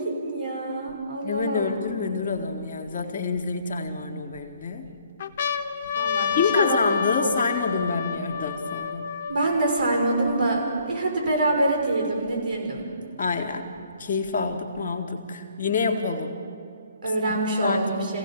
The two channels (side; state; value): both; inverted; correlation -0.63